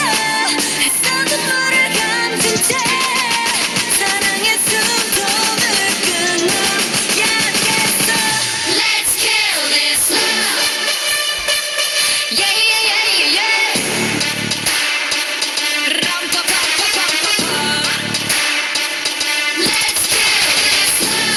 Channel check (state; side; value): identical; both; correlation 1.00